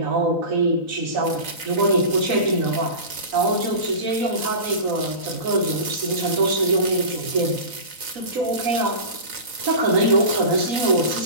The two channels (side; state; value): left; late; 4.0 ms